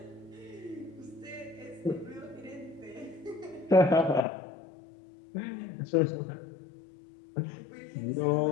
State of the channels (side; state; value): right; drops out; at 4.2 s